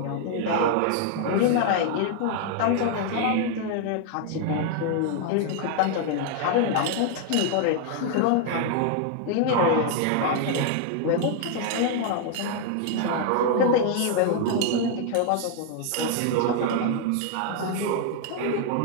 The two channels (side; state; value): both; different; correlation 0.00